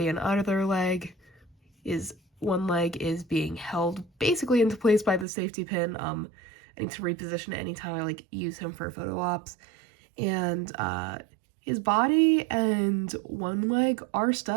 and other leg is one leg is being held basically into place by the safety pin. I need to reposition it anytime I like use him for photo ops, and his body and one leg are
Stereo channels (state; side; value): drops out; left; at 5.2 s